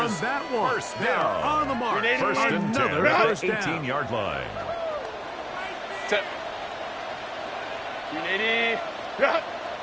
that one. first They're down. on the mark. 1st and 10 Another at first the down. 18-yard line. Set. 380.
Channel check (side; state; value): both; identical; correlation 1.00